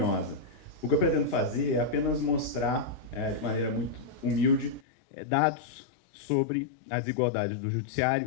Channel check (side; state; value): right; drops out; at 4.8 s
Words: O que eu pretendo fazer é apenas mostrar, de maneira muito humilde, dados sobre a desigualdade do